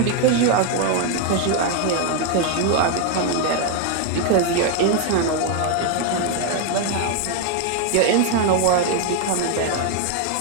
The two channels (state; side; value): different; both; correlation 0.01